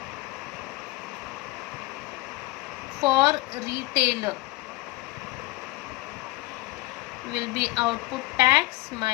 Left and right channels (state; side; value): quieter; right; 20.0 dB